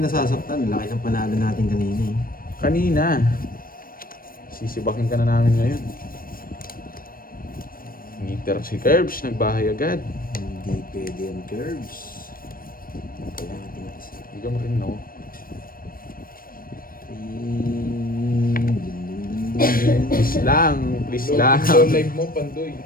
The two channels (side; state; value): right; late; 0.41 ms